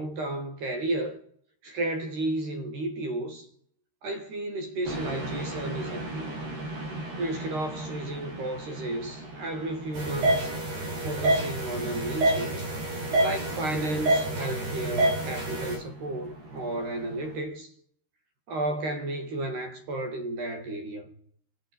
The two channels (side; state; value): left; late; 13 ms